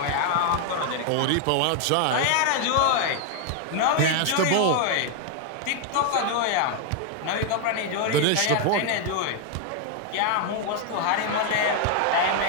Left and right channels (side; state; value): both; different; correlation 0.00